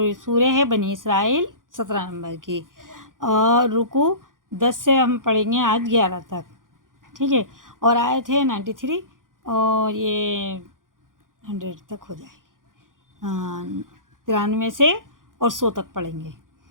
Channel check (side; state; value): left; late; 0.90 ms